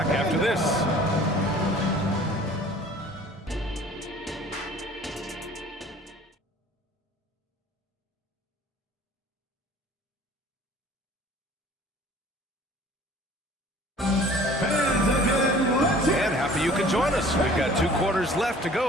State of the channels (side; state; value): both; normal; correlation 0.49